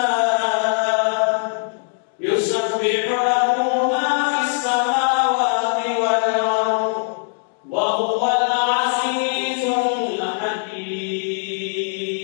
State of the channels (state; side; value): silent; right; digital silence